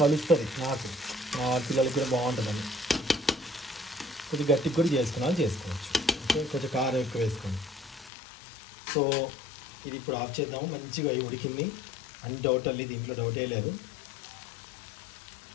కలుస్తుంది నాకు, మా పిల్లలకి కూడా బాగుంటుందండి. కొద్దిగా గట్టికి కూడా చేసుకోవచ్చు. ఓకే కొంచెం కారం ఎక్కువ వేసుకోండి. సో ఇది ఇప్పుడు ఆఫ్ చేద్దాము. మంచిగా ఉడికింది, అన్ని డౌట్ అల్లి, దీంట్లో డౌటే లేదు.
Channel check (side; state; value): right; drops out; at 8.1 s